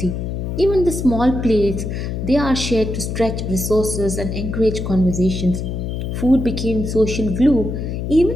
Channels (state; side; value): noise; left; hum, 4 dB below the sound